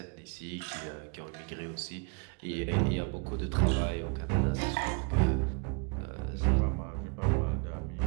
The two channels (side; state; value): left; quieter; 34.0 dB